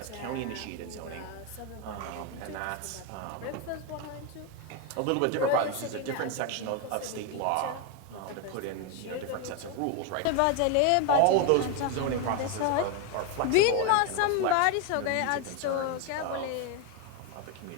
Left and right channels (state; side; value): different; both; correlation 0.01